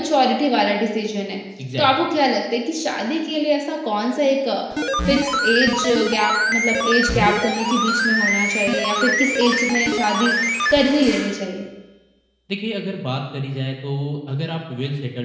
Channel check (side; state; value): both; identical; correlation 1.00